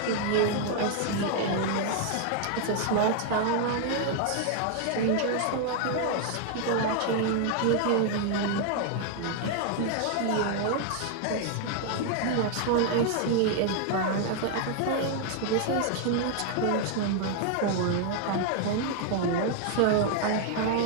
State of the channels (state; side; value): different; both; correlation 0.00